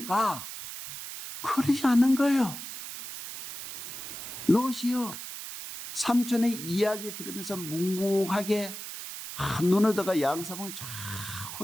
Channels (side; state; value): right; noise; hiss, 9 dB below the sound